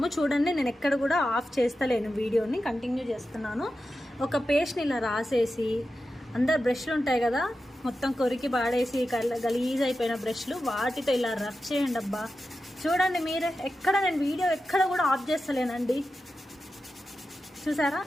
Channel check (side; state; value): both; normal; correlation 0.91